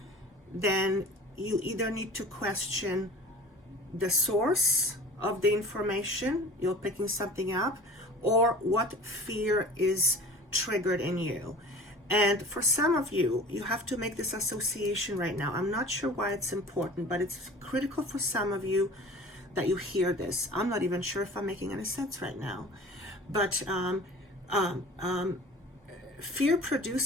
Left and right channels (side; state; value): both; normal; correlation 0.41